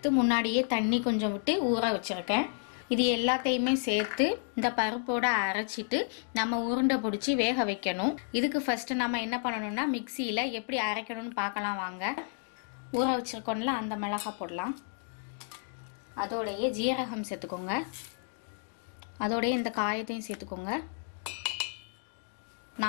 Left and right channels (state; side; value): silent; right; 57 dB below the other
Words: முன்னாடியே தண்ணி கொஞ்சம் விட்டு ஊற வச்சிருக்கேன். இது எல்லாத்தையுமே சேர்த்து இந்த பருப்போட அரைச்சிட்டு நம்ம உருண்டை பிடிச்சி வேக வைக்கணும். இதுக்கு ஃபர்ஸ்ட் நம்ம என்ன பண்ணணும்னா மிக்சியில எப்படி அரைக்கணும்னு பார்க்கலாம் வாங்க. ஊற வச்சிருக்கோம்ல அந்த மிளகாய் போடலாம். அதோடைய ஜீரகம் சேர்த்துக்கோங்க. அதோடைய இந்த காயத்தையும் சேர்த்துக்கோங்க.